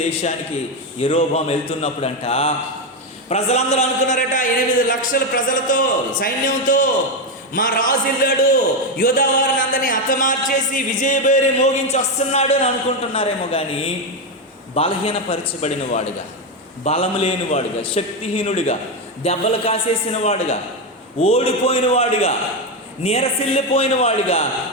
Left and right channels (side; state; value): both; normal; correlation 0.09